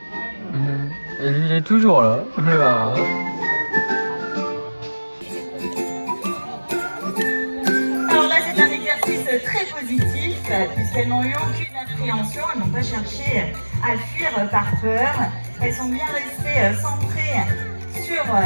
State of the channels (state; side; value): inverted; both; correlation -1.00